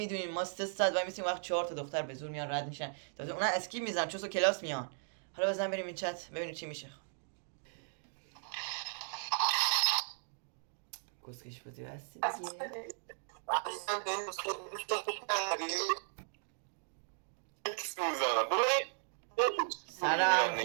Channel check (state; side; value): silent; left; digital silence